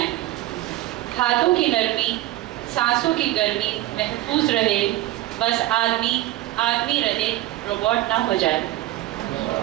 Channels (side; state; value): left; quieter; 16.1 dB